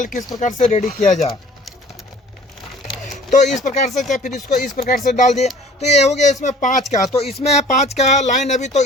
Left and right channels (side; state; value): both; normal; correlation 0.49